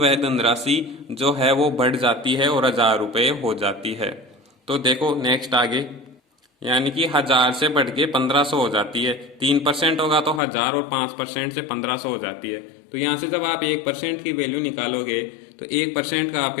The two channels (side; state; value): right; drops out; at 10.4 s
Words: धनराशि जो है वो बढ़ जाती है और 1000 रुपये हो जाती है। तो देखो नेक्स्ट आगे, यानी कि 1000 से बढ़ के 1500 हो जाती है। 3% होगा तो 1000 और 5% से 1500 हो जाती है। तो यहाँ से जब आप 1% की वैल्यू निकालोगे तो 1% का